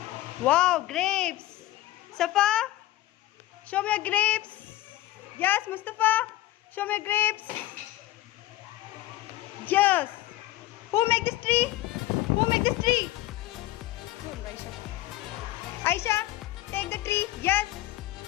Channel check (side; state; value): right; quieter; 16.0 dB